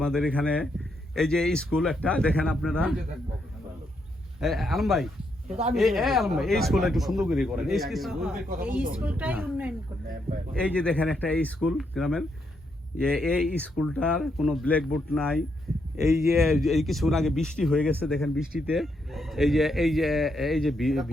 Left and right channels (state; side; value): normal; both; correlation 0.78